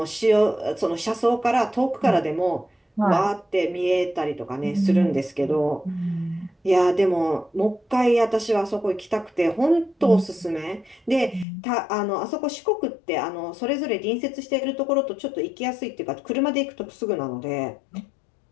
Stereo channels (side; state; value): right; drops out; at 11.5 s